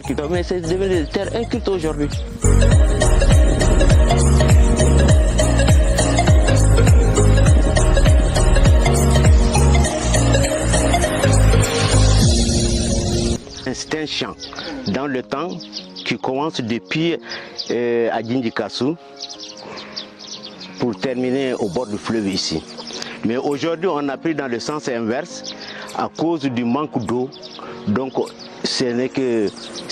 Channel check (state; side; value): identical; both; correlation 1.00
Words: cultivées, mais c'est devenu des terres incultes aujourd'hui. C'est un champ dans le temps qui commence depuis à Djindikassou pour terminer au bord du fleuve ici. Mais aujourd'hui, on a pris dans le sens inverse à cause du manque d'eau. Donc, ce n'est que